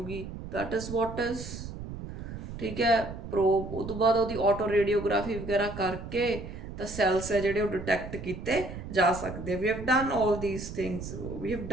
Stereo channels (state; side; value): noise; right; rumble, 10 dB below the sound